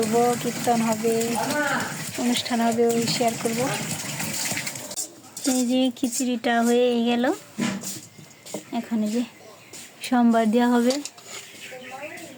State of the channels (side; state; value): both; identical; correlation 1.00